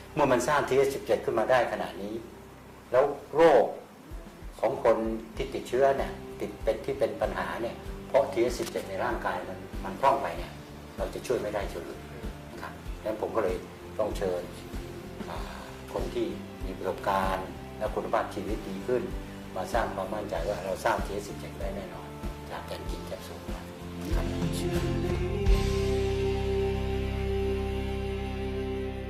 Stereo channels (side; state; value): both; identical; correlation 1.00